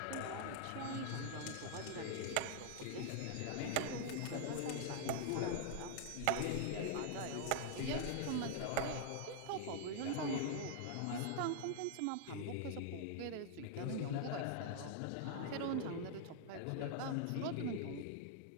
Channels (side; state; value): both; different; correlation 0.00